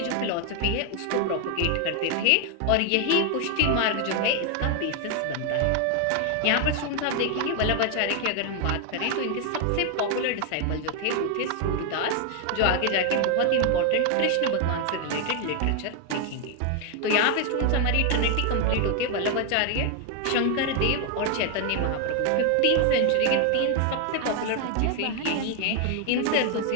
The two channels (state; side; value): different; both; correlation 0.01